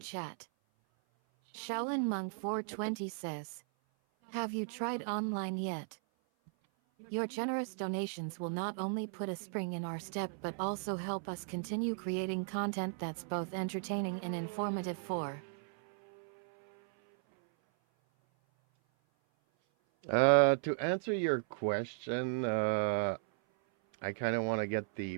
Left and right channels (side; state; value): left; silent; 54 dB below the other